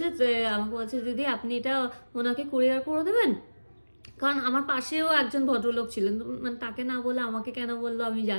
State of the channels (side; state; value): both; inverted; correlation -1.00